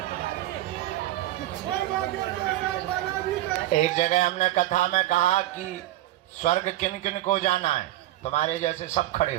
एक जगह हमने कथा में कहा कि स्वर्ग किन किन को जाना है, तुम्हारे जैसे सब खड़े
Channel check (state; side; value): quieter; left; 15.3 dB